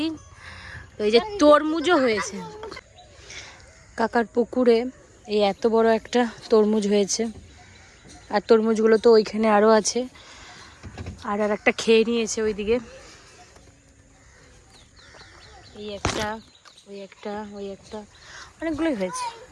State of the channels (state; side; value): identical; both; correlation 1.00